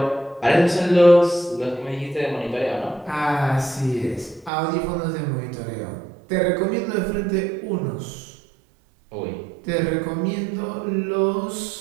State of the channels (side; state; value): left; drops out; at 4.5 s